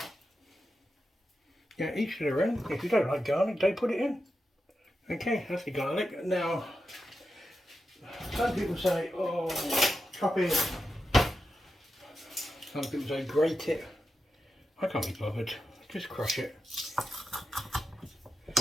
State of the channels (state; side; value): normal; both; correlation 0.89